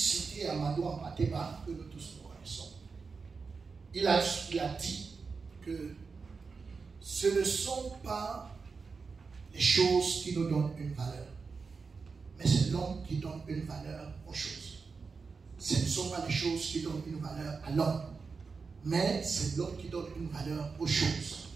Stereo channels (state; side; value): quieter; left; 4.8 dB